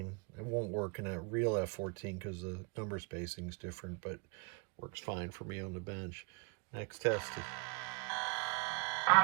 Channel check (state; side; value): quieter; left; 31.6 dB